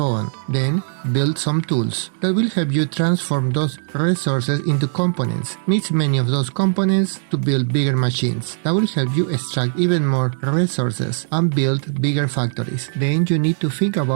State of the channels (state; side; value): silent; left; digital silence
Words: on. Then build some tools that will help you transform those resources into components. Mix many of those components to build bigger machines that will help you extract even more resources and build bigger factories. Then you need to think